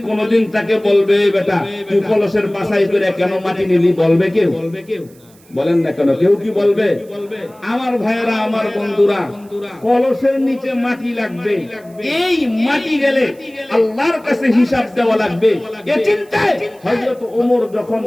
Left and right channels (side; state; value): right; noise; hiss, 29 dB below the sound